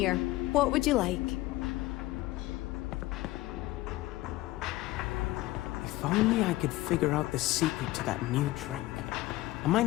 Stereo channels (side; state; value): right; quieter; 18.0 dB